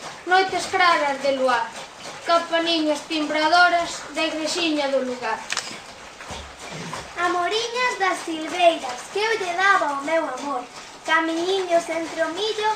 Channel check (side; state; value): both; identical; correlation 1.00